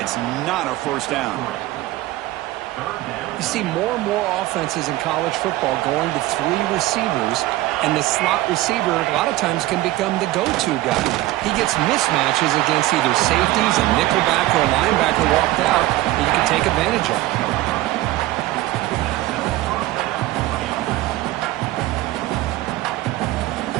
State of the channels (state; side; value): quieter; left; 17.0 dB